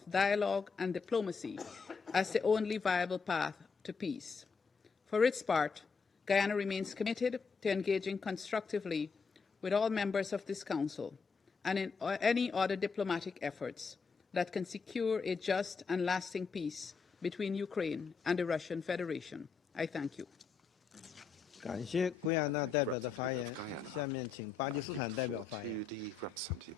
dialogue and diplomacy as the only viable path to peace. For its part, Guyana remains committed to engaging constructively with all members of this Council and in any other diplomatic efforts that can secure a just and lasting peace between Ukraine and the Russian Federation. I thank you. I thank the representative of Guyana. I give the floor to the representative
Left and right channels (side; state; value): right; quieter; 5.2 dB